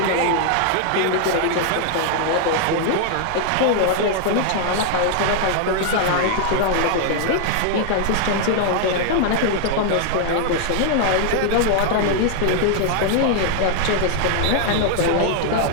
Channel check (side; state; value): both; different; correlation 0.00